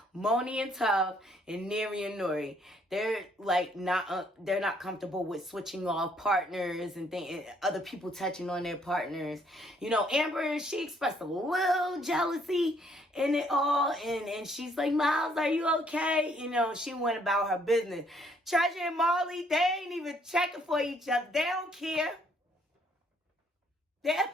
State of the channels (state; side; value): normal; both; correlation 0.66